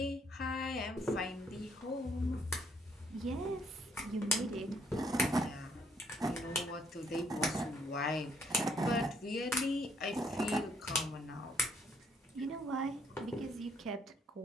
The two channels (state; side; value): normal; both; correlation 0.69